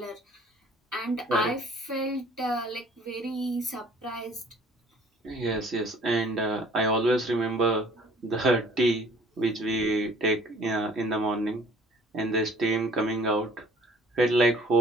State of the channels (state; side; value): normal; both; correlation 0.54